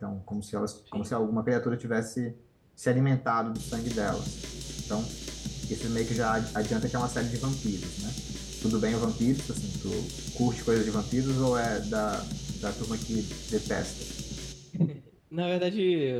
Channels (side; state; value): both; identical; correlation 1.00